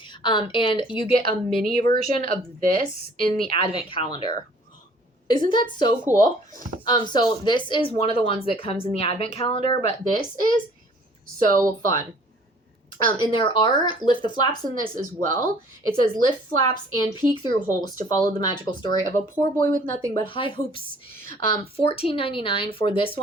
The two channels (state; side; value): normal; both; correlation 0.55